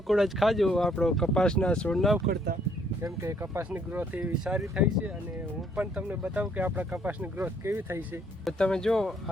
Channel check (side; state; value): both; normal; correlation 0.66